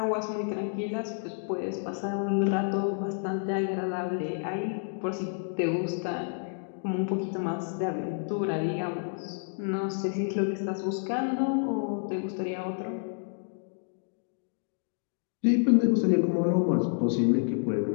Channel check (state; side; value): silent; right; digital silence